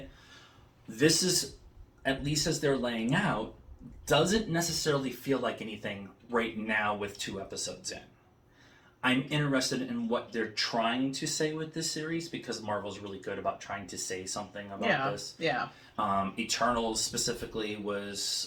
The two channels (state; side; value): identical; both; correlation 1.00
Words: This is, at least as they're laying out, doesn't necessarily feel like anything right now with 2 episodes in. I'm interested in what they're trying to say with this series, because Marvel's really good about trying to say something about this. Yeah. Eternals specifically